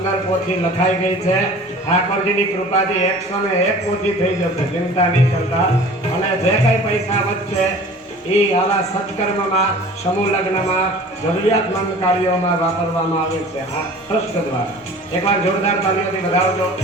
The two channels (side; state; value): both; normal; correlation 0.44